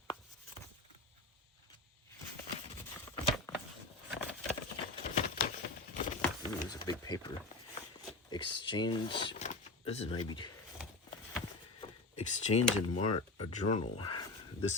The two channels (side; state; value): right; quieter; 3.2 dB